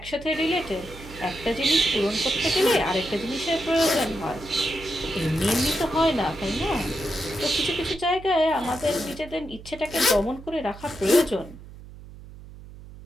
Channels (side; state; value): right; noise; hum, 17 dB below the sound